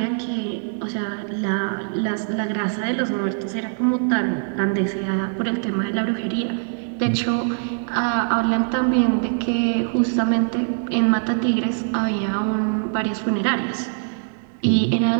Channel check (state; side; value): silent; left; digital silence